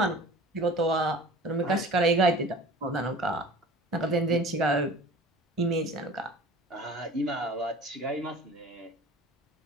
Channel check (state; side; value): normal; both; correlation 0.42